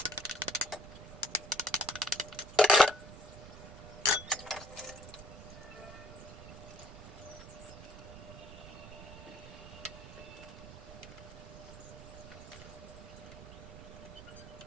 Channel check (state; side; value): noise; right; rumble, 13 dB below the sound